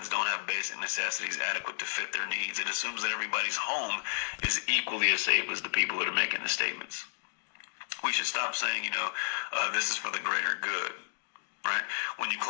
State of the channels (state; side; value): silent; right; digital silence